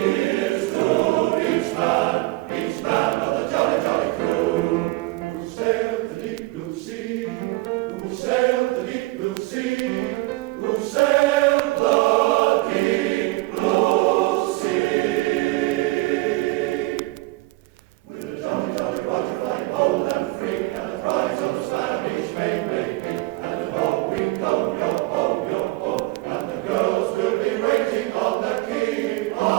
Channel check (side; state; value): left; quieter; 21.3 dB